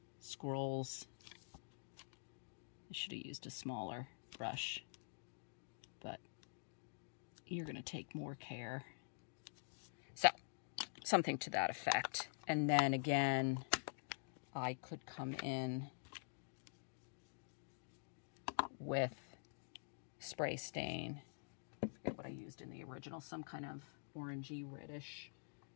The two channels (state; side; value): silent; right; digital silence